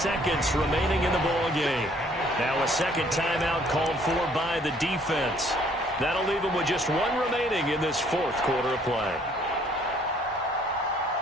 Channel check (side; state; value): both; normal; correlation 0.61